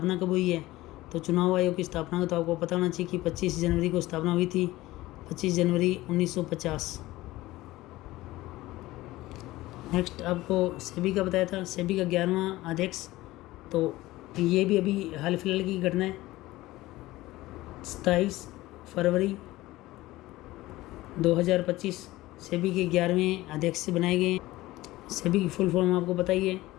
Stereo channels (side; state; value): right; quieter; 17.8 dB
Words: कब हुई है, तो चुनाव आयोग की स्थापना को तो आपको पता होना चाहिए कि 25 जनवरी को स्थापना हुई थी, 25 जनवरी 1950। नेक्स्ट आपको सेबी का बताया था, सेबी का 11वां अध्यक्ष। तो ये भी अभी हाल फिलहाल की घटना है, 27 फरवरी 2025 सेबी के 11वें अध्यक्ष बनाए गए हैं। सेबी की फुल फॉर्म आपको पता ही है,